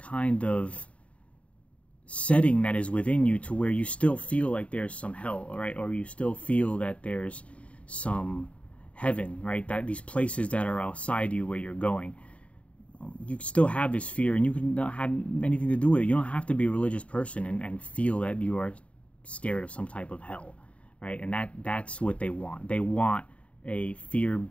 of setting that is within you to where you still feel like there's some hell, right? Or you still feel that there's some heaven, right? That these places that are outside you where you're going. You still have this fear, and you can not have anything to do with it. You don't have to be a religious person and feel that you are scared of some type of hell, right? And that's what they want. They want a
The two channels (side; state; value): right; late; 0.064 ms